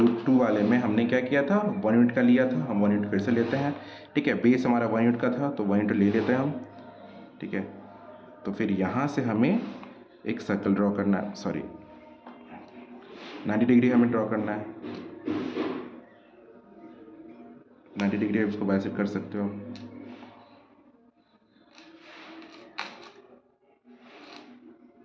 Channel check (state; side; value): identical; both; correlation 1.00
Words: टू वाले में हमने क्या किया था, वन यूनिट का लिया था, हम वन यूनिट फिर से लेते हैं। ठीक है, बेस हमारा वन यूनिट का था तो वन यूनिट ले लेते हैं हम। ठीक है, तो फिर यहाँ से हमें एक सर्कल ड्रॉ करना है, सॉरी 90 डिग्री हमें ड्रॉ करना है। 90 डिग्री आप इसको बाइसेक्ट कर सकते हो।